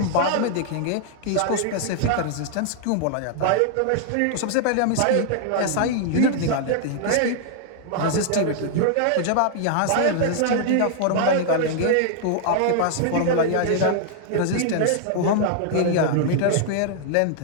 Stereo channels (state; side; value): different; both; correlation 0.00